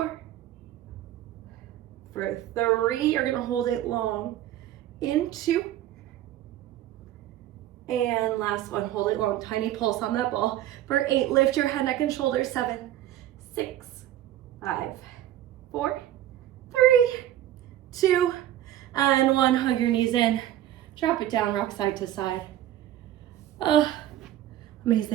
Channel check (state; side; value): quieter; left; 12.7 dB